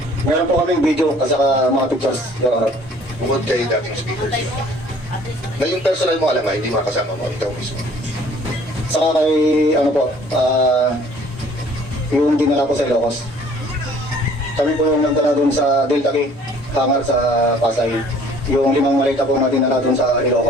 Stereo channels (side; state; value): both; normal; correlation 0.55